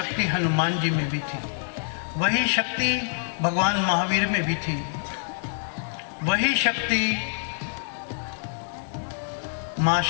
हनुमान जी में भी थी, वही शक्ति भगवान महावीर में भी थी, वही शक्ति माँ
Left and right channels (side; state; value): right; silent; digital silence